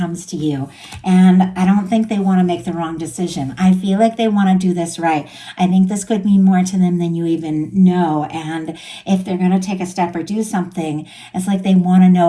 to you. And I don't think they want to make the wrong decision. I feel like they want to do this right. I think this could mean more to them than you even know. And if they're going to take a step or do something, it's like they want to know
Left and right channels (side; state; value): both; identical; correlation 1.00